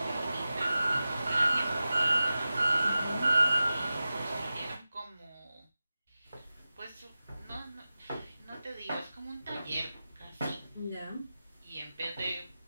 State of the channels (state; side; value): inverted; both; correlation -0.94